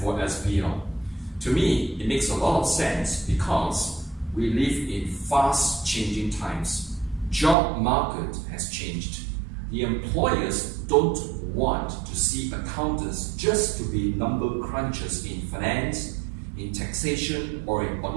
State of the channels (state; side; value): drops out; left; at 7.6 s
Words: for SBL. To me, it makes a lot of sense because we live in fast changing times. Job market has changed. The employers don't want to see accountants just to be number crunchers in finance, in taxation, or in